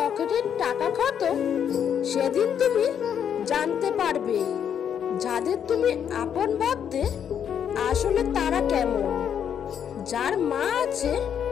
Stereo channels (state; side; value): quieter; right; 8.5 dB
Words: টাকা খতম, সেদিন তুমি জানতে পারবে যাদের তুমি আপন ভাবতে আসলে তারা কেমন। যার মা আছে